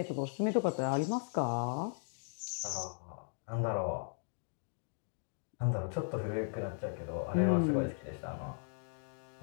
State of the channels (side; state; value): right; silent; digital silence